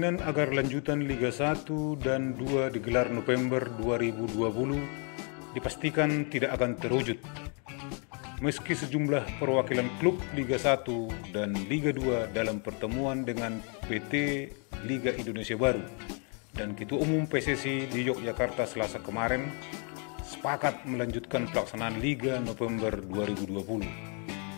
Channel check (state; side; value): quieter; right; 38.4 dB